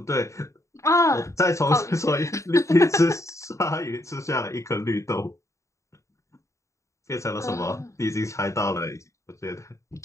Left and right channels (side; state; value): right; late; 0.15 ms